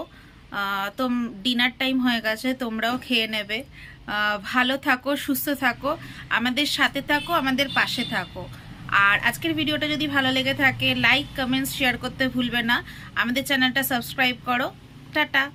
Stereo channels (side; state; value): both; identical; correlation 1.00